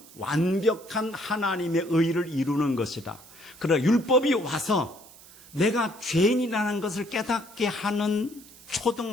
완벽한 하나님의 의를 이루는 것이다. 그러나 율법이 와서 내가 죄인이라는 것을 깨닫게 하는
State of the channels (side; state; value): right; noise; hiss, 21 dB below the sound